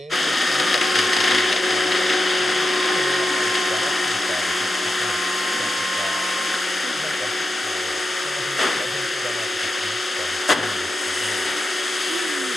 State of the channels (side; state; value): both; normal; correlation 0.89